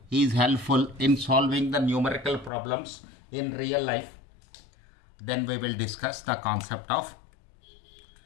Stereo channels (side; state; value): right; drops out; at 2.5 s